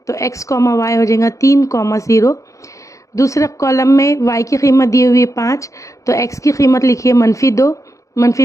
तो x, y हो जाएगा 3, 0। दूसरे कॉलम में y की कीमत दी हुई है 5, तो x की कीमत लिखिए -2,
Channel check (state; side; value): late; right; 0.15 ms